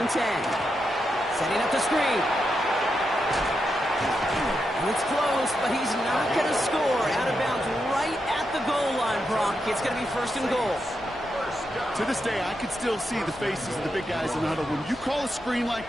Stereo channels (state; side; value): normal; both; correlation 0.85